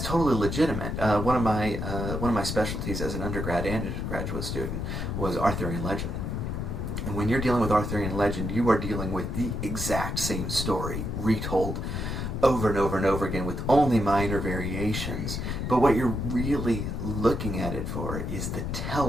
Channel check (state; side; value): noise; left; rumble, 3 dB below the sound